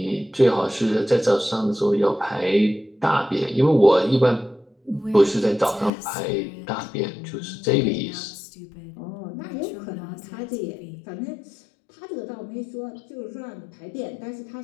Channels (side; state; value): right; drops out; at 5.9 s